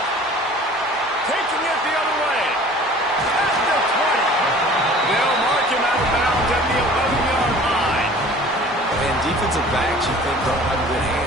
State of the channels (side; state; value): both; normal; correlation 0.47